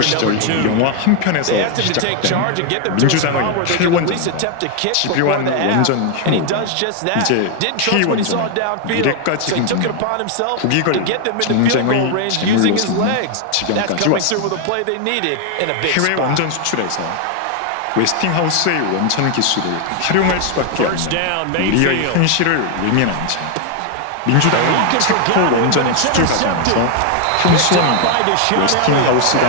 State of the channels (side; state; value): both; different; correlation 0.00